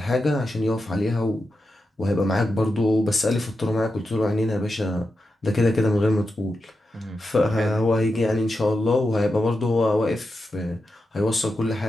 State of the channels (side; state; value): both; normal; correlation 0.89